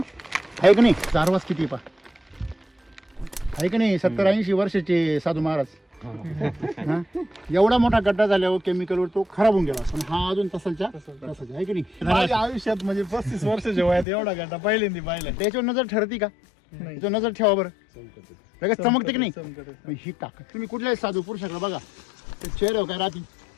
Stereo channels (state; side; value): drops out; right; at 14.1 s